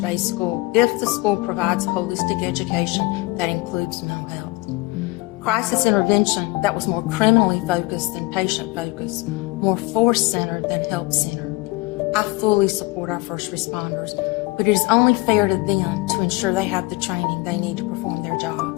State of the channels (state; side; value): quieter; right; 22.3 dB